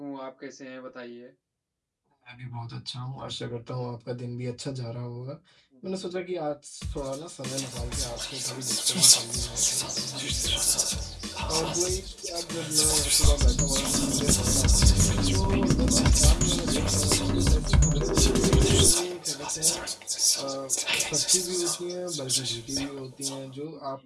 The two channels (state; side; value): identical; both; correlation 1.00